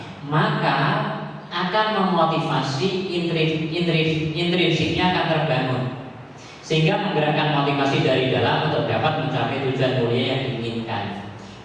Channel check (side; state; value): both; identical; correlation 1.00